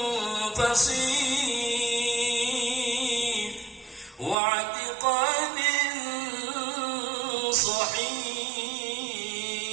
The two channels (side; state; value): left; drops out; at 4.4 s